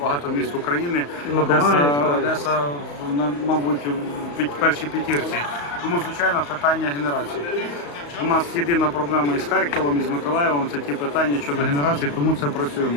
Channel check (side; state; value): right; late; 35 ms